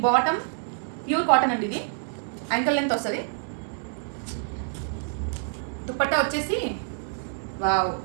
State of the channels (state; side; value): silent; left; digital silence